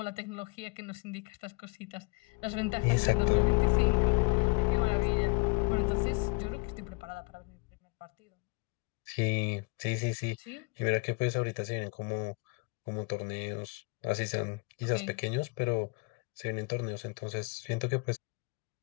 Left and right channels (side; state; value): right; quieter; 29.4 dB